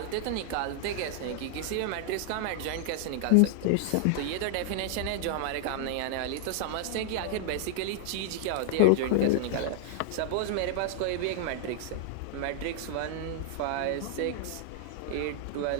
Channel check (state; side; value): different; both; correlation -0.01